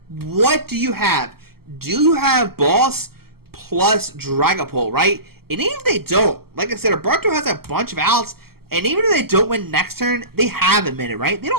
what do you have? Do you have Boss plus Dragapult, right? And even if they don't, like I said, Alberto has a bunch of outs, and even if they don't win next turn, they have a minute, right? They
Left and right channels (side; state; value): left; late; 0.95 ms